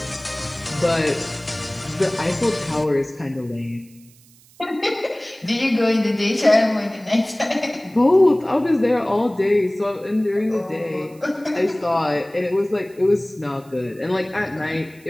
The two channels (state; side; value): noise; right; hiss, 27 dB below the sound